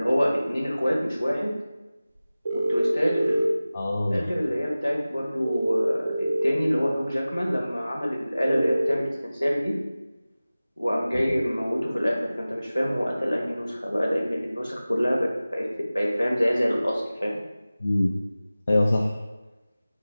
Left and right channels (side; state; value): both; inverted; correlation -0.97